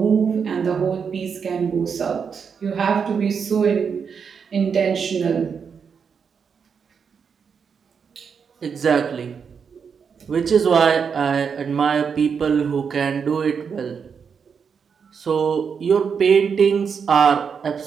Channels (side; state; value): left; quieter; 6.4 dB